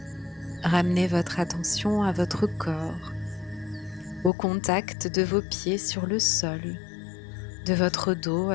Ramenez votre attention à votre corps, au contact de vos pieds sur le sol, de votre dos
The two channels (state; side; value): drops out; right; at 4.3 s